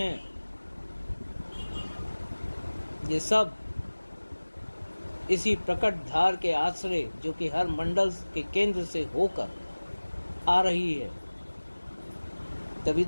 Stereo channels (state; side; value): inverted; both; correlation -1.00